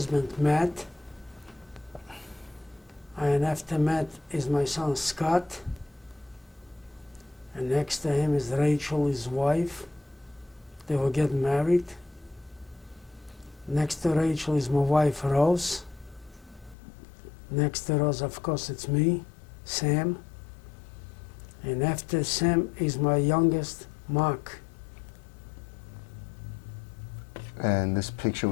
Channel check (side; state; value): right; drops out; at 16.8 s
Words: Matt, and after Matt is my son Scott, and next to him is Rachel, his wife. They will get married. Next to Rachel is my wife Rose. Next to Rose, of course, it's me, Sam. And after Sam is my youngest, Mark. And this picture